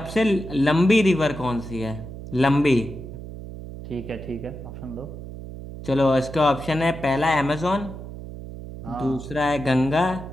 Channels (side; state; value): right; noise; hum, 11 dB below the sound